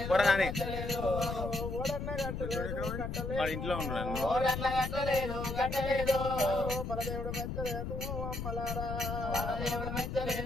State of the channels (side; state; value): left; noise; rumble, 4 dB below the sound